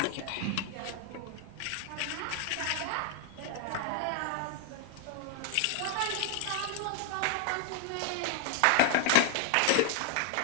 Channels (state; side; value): different; both; correlation 0.00